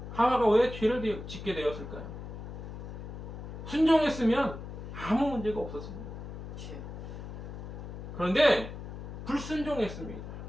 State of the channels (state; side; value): noise; left; hum, 9 dB below the sound